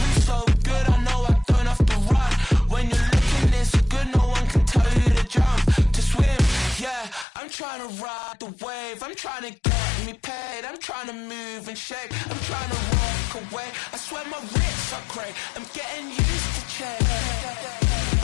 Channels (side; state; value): right; drops out; at 7.2 s